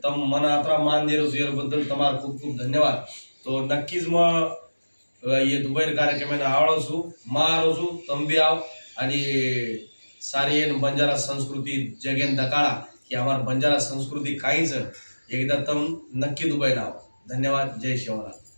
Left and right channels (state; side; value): inverted; both; correlation -1.00